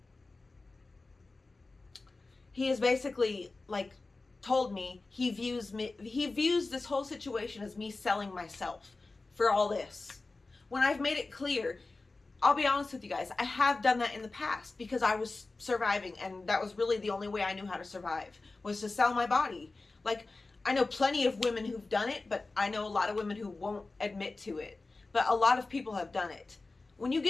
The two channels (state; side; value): quieter; right; 3.5 dB